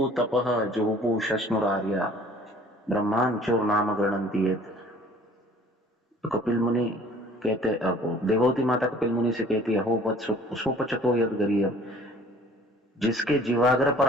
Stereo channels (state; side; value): normal; both; correlation 0.52